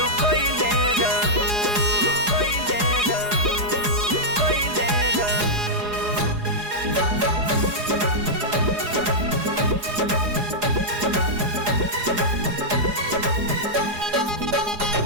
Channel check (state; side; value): late; left; 4.8 ms